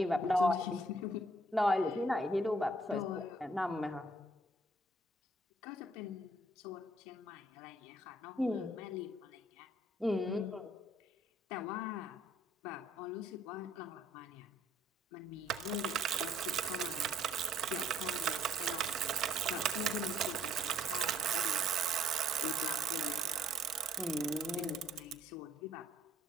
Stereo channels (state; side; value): normal; both; correlation 0.64